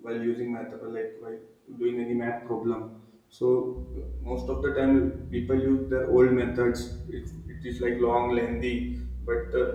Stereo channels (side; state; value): both; identical; correlation 1.00